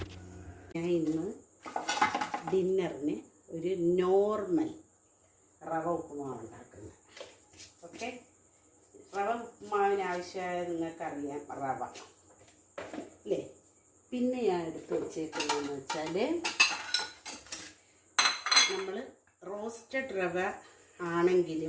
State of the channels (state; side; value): identical; both; correlation 1.00